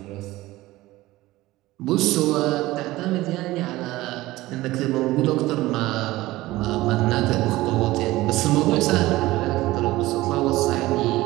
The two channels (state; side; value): quieter; left; 18.0 dB